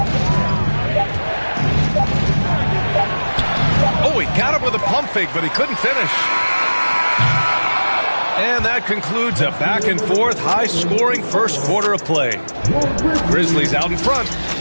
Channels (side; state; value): both; inverted; correlation -1.00